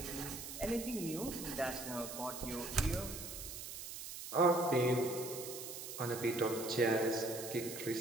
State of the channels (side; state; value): right; noise; hiss, 8 dB below the sound